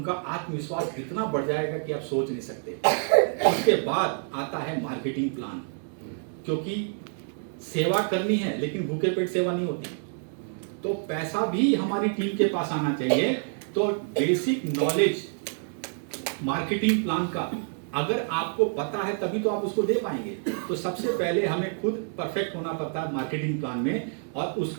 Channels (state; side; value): silent; left; 60 dB below the other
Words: आत्मविश्वास इतना बढ़ जाएगा कि आप सोच नहीं सकते। उसके बाद आता है मार्केटिंग प्लान, क्योंकि सेवा करनी है लेकिन भूखे पेट सेवा नहीं होती। तो पैसा भी हमारी टीम के पास आना चाहिए। तो बेसिक नॉलेज मार्केटिंग प्लान का अगर आपको पता है तभी तो आप उसको दे पाएंगे। तो सबसे पहले हमें खुद परफेक्ट होना पड़ता है मार्केटिंग प्लान में, और